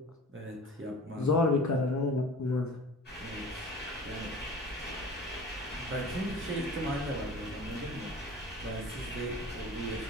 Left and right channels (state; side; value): normal; both; correlation 0.40